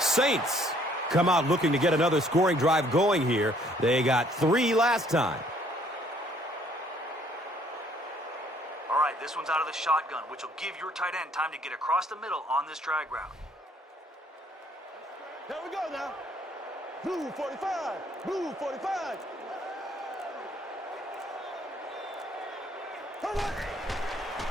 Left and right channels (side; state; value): both; normal; correlation 0.62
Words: come out looking to get another scoring drive going here. They got 3 last time. All right, this one's out of the shotgun, which will give your tight end time to get across the middle on this drag route. There we go now. Blue 45. Blue 45.